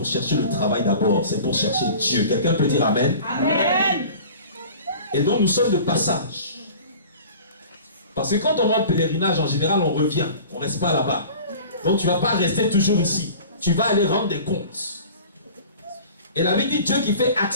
chercher le travail d'abord, c'est pour chercher Dieu. Quelqu'un peut dire Amen? Amen. Et donc, nous sommes de passage. Parce que quand on va en pèlerinage, en général, on revient. On ne reste pas là-bas. Donc, tu ne vas pas rester toujours ici. Tu vas aller rendre des comptes. Et la Bible dit Dieu qui fait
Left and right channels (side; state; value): both; inverted; correlation -0.42